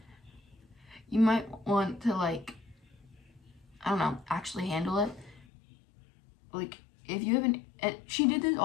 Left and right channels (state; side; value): drops out; right; at 5.5 s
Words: you might want to, like, I don't know, actually handle it. Like, if you haven't, and she did this